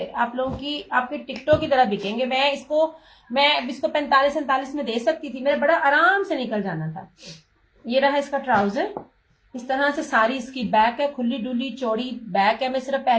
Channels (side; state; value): both; identical; correlation 1.00